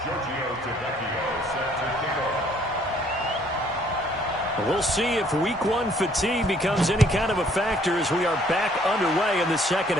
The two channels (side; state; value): both; normal; correlation 0.62